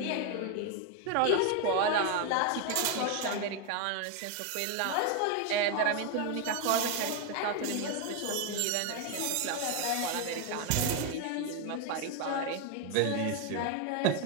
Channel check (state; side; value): different; both; correlation 0.01